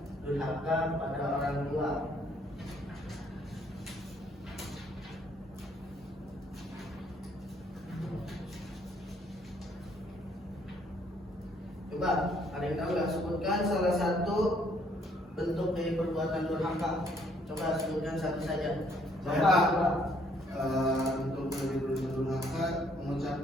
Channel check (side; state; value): both; normal; correlation 0.66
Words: durhaka pada orang tua. Coba, ada yang tahu nggak? Sebutkan salah satu bentuk dari perbuatan durhaka. Coba sebutkan satu saja. Bapak, untuk durhaka